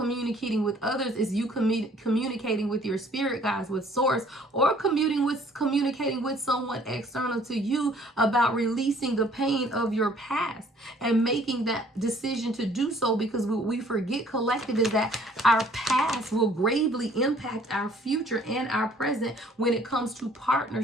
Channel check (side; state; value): both; normal; correlation 0.58